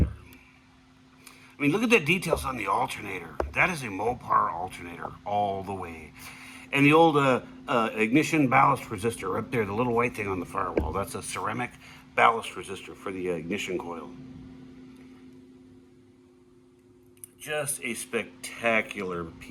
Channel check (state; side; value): identical; both; correlation 1.00